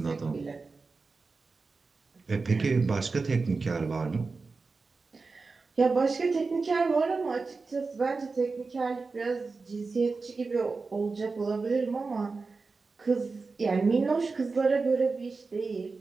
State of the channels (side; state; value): left; quieter; 4.2 dB